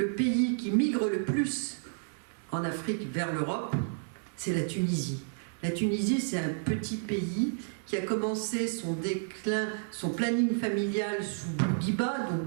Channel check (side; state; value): left; silent; 57 dB below the other